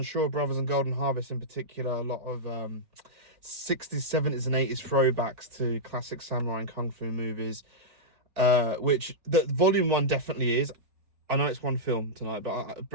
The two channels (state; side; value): late; left; 4.5 ms